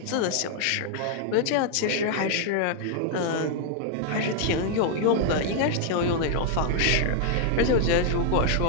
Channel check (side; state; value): both; different; correlation 0.00